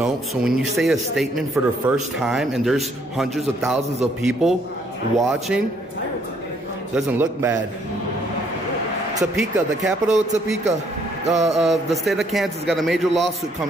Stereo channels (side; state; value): both; normal; correlation 0.67